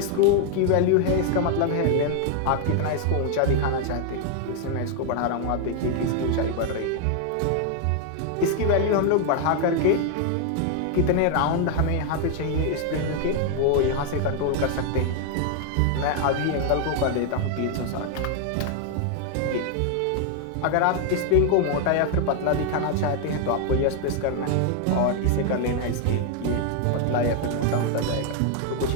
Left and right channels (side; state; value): both; different; correlation 0.00